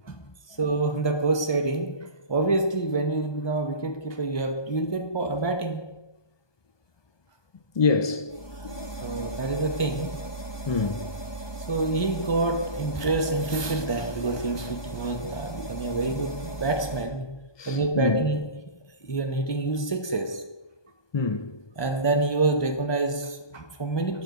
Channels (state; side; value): late; right; 1.2 ms